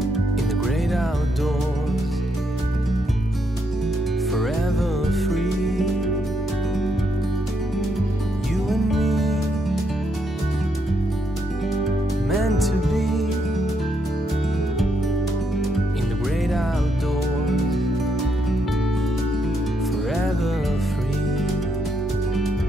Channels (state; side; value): normal; both; correlation 0.77